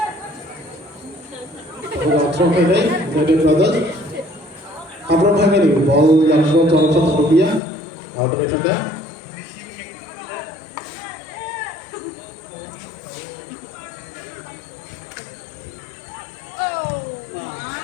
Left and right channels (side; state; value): right; drops out; at 7.6 s